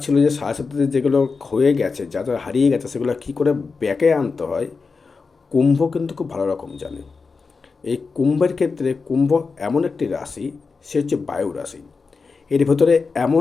ছিল যে সাথে সাথে যেগুলো ক্ষয়ে গেছে, যা যা হারিয়ে গেছে, সেগুলো কী করে ব্যাকে আনতে হয়, কুম্ভ কিন্তু খুব ভালো রকম জানে। এই কুম্ভের ক্ষেত্রে কুম্ভ এমন একটি রাশি, সে হচ্ছে বায়ু রাশি। এর ভেতরে এমন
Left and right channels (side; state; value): right; quieter; 4.6 dB